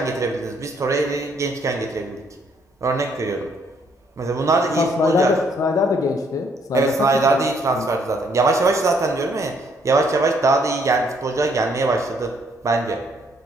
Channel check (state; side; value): normal; both; correlation 0.68